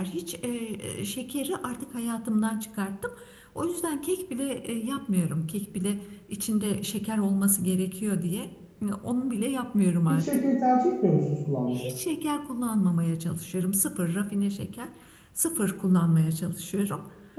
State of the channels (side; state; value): both; identical; correlation 1.00